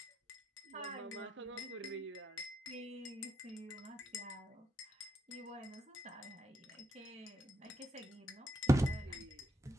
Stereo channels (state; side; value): normal; both; correlation 0.80